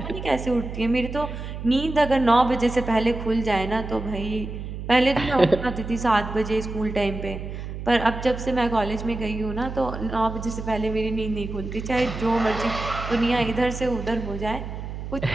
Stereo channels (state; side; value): noise; right; hum, 8 dB below the sound